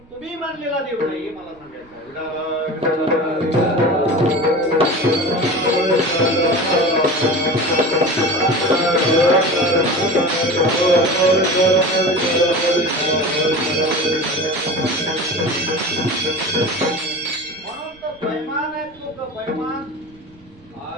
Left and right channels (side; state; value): right; noise; rumble, 28 dB below the sound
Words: तुम्ही मानलेला देव नाही हे मला सांगायचं म्हणून तो बैमान आहे. तो बैमान